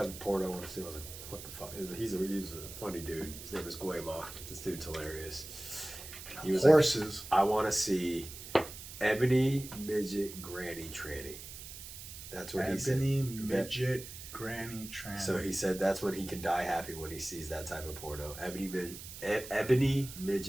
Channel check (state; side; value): noise; right; hiss, 12 dB below the sound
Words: of porn I want to see. I was like, what the fuck? He's a funny dude. His name is Guayma. This dude's hilarious. He was Horses. like, I want to see Ebony Midget Granny Tranny. That's what he said. Ebony midget granny tranny. So he said that's when he can die happy when he sees that type of porno. Ebony